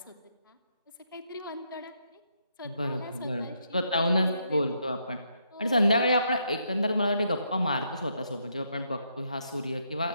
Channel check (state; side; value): inverted; both; correlation -0.77